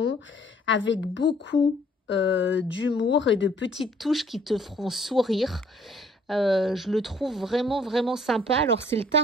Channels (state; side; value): normal; both; correlation 0.60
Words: avec beaucoup d'humour et de petites touches qui te feront sourire. Je le trouve vraiment sympa. Alors c'est le